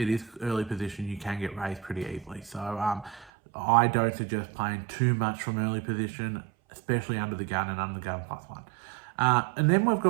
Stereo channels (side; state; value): left; drops out; at 3.3 s